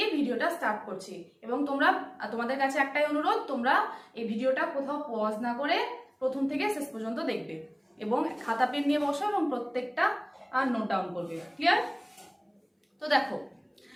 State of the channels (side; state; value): both; identical; correlation 1.00